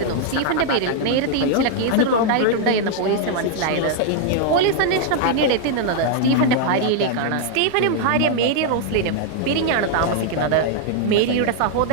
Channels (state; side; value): different; both; correlation -0.01